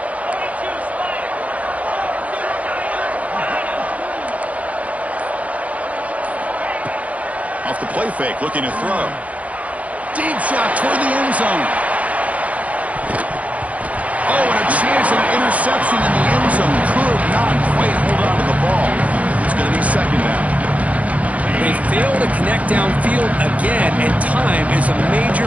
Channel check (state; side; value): late; left; 0.067 ms